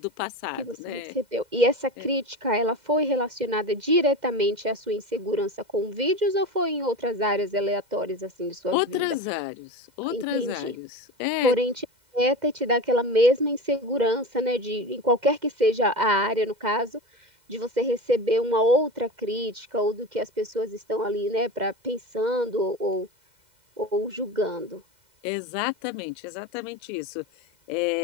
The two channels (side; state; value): left; late; 2.0 ms